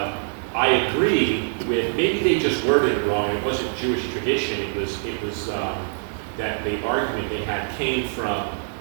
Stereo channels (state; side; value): silent; left; 63 dB below the other